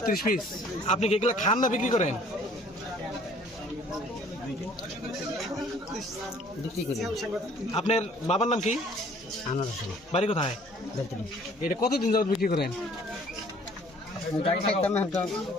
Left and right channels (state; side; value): normal; both; correlation 0.56